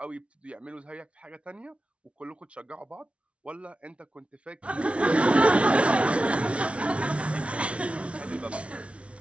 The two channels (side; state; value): left; late; 0.061 ms